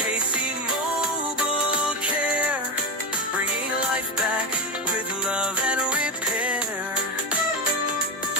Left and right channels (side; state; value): both; normal; correlation 0.15